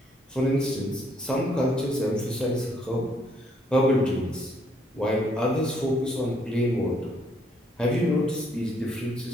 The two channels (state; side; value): normal; both; correlation 0.69